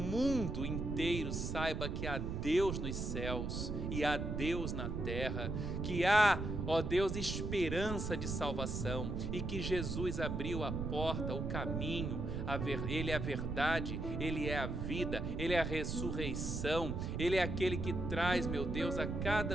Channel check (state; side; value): noise; right; rumble, 3 dB below the sound